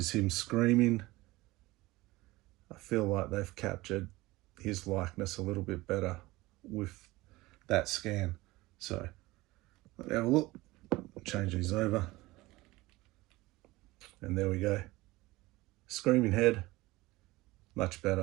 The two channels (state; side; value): quieter; left; 20.0 dB